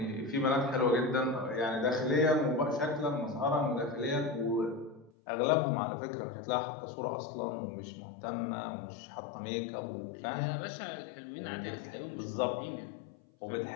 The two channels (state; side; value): drops out; right; at 5.1 s